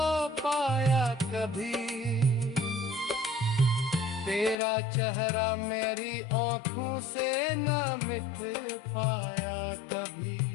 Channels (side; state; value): right; drops out; at 4.5 s